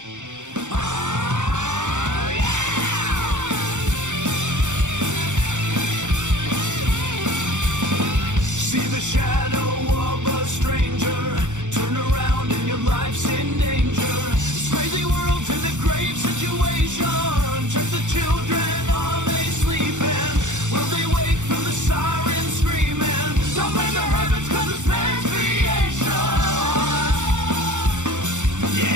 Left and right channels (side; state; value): left; late; 0.85 ms